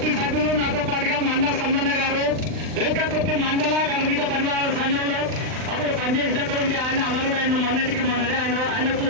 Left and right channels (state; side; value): late; left; 39 ms